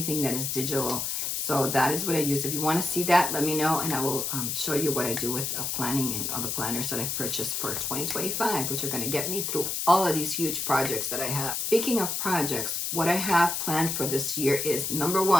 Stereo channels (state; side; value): noise; left; hiss, 1 dB below the sound